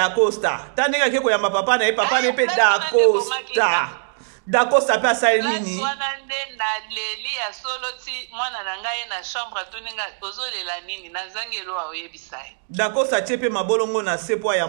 tandenga ke koyamba papa na papa ne pe Dacosta pe asali nini swana nde na leli ya solo ti mwana na ngai na chambre tuninga ozolela nini na zangelo wa oyebisai Dacosta chepe mabolongo na sepo ya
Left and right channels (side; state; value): left; silent; digital silence